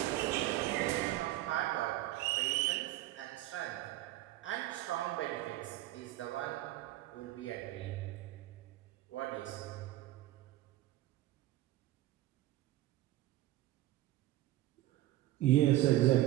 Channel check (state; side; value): quieter; left; 15.4 dB